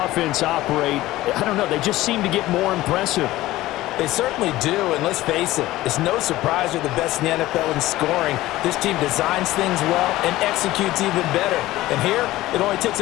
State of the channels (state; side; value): quieter; right; 16.7 dB